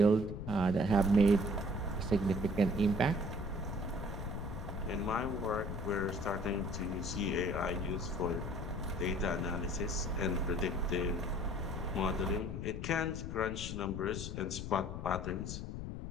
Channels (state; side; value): noise; left; rumble, 6 dB below the sound